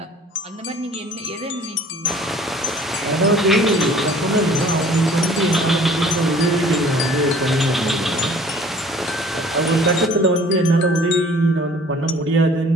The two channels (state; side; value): normal; both; correlation 0.51